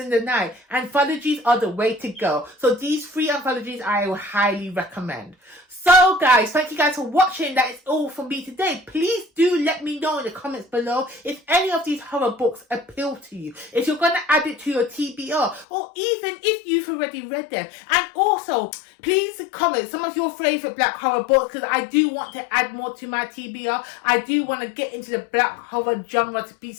the night, anthologies are the way to go. So these 3 anthologies I will highly recommend. So guys, thank you guys for watching. That is all from me today. Please do let me know in the comments below if any of these horror books appeal to you, if you're going to add it to your TBR, or even if you've already read them. And also, please comment some of your favourite black horror books, because I do want to add more to my TBR. I do want to get into the black horror genre, to be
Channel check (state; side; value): drops out; right; at 15.7 s